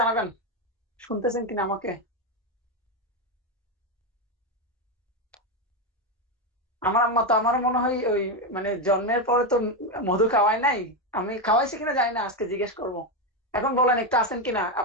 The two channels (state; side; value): normal; both; correlation 0.09